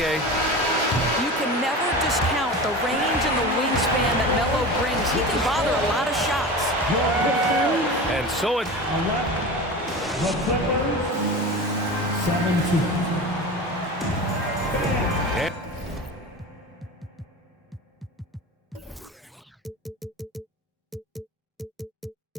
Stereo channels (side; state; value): both; normal; correlation 0.31